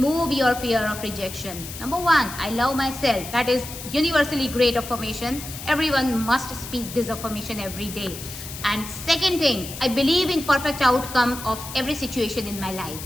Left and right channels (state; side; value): noise; left; hiss, 11 dB below the sound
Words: your fear of rejection. Number 1, I love myself. That is universally great affirmation. Everyone must speak this affirmation every day. And second thing, I believe in perfect outcome of every situation in my life.